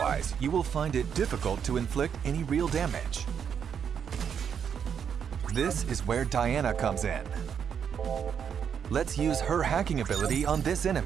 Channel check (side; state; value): left; quieter; 7.7 dB